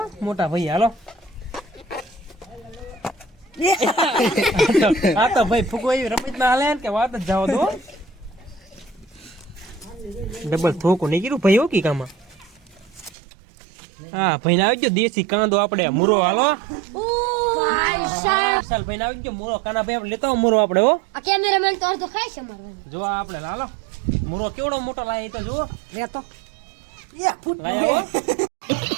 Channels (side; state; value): left; drops out; at 13.2 s